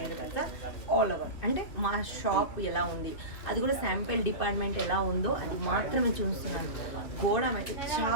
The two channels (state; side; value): late; right; 2.9 ms